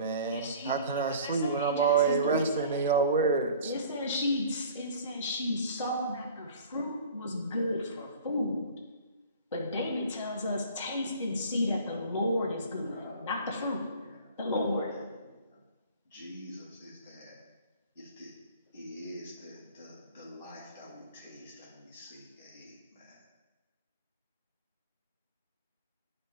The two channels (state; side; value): inverted; both; correlation -0.45